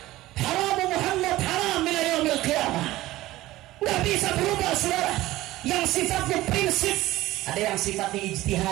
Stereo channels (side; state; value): left; quieter; 16.9 dB